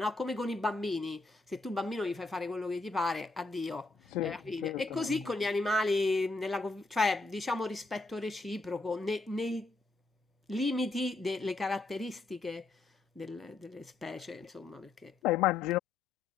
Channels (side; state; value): right; quieter; 3.4 dB